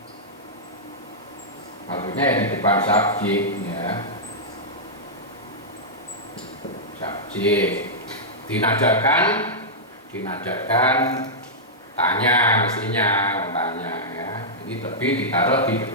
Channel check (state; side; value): normal; both; correlation -0.10